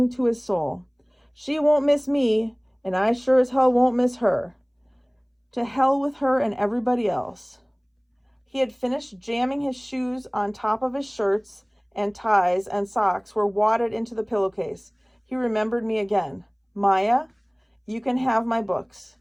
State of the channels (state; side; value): identical; both; correlation 1.00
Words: to his soul. "She won't miss me, and I sure as hell won't miss her. To hell with her and everybody else." He had finished jamming his shoes on top of his shirts, and ties and socks were wadded into the pillowcase. He remembered me again. "Maya, you can have my books."